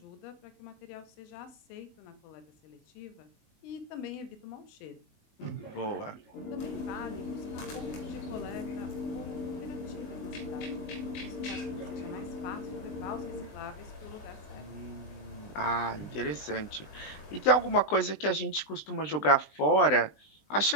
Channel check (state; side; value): late; right; 20 ms